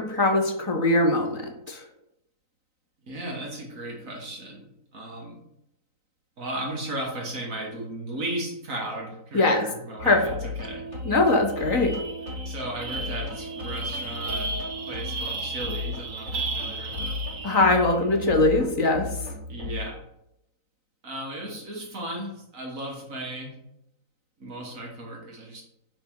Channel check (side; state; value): left; late; 3.9 ms